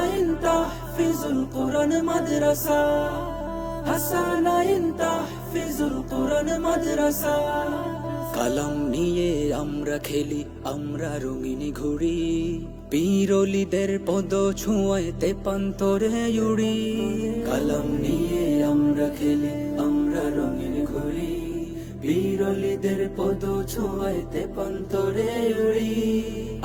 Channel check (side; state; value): both; identical; correlation 1.00